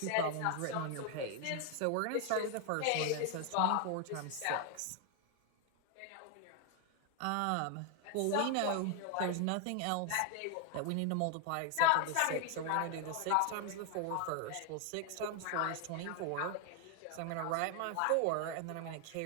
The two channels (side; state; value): both; different; correlation 0.01